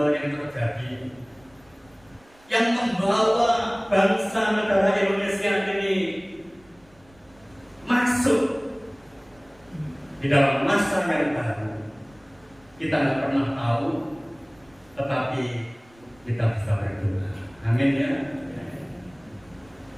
yang terjadi yang membawa bangsa negara Indonesia ini masuk di dalam masa yang baru, kita tidak pernah tahu, tetapi kita bisa berdoa. Amin ya.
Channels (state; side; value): noise; right; rumble, 30 dB below the sound